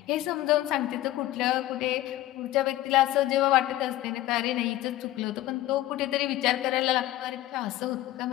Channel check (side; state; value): right; quieter; 15.2 dB